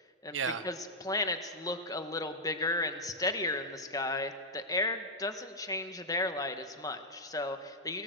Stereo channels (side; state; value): both; normal; correlation -0.04